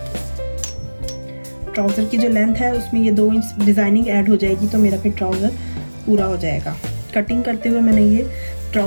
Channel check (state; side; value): inverted; both; correlation -1.00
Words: ट्राउज़र की जो लेंथ है उसमें ये 2 इंच डिज़ाइनिंग ऐड हो जाएगी, तो मेरा फिर ट्राउज़र पूरा हो जाएगा। कटिंग करते हुए मैंने ये